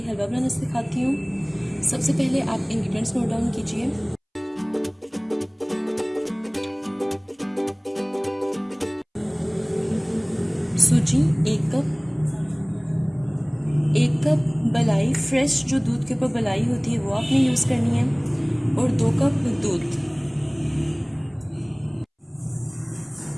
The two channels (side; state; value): both; identical; correlation 1.00